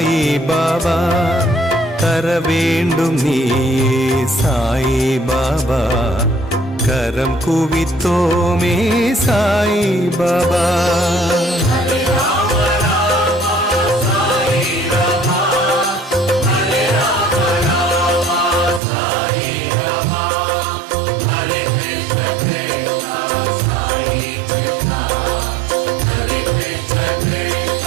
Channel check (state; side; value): drops out; left; at 18.8 s